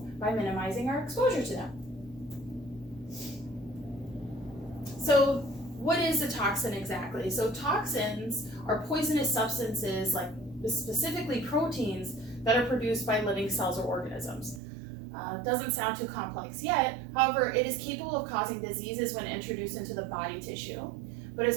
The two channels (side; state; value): left; drops out; at 14.6 s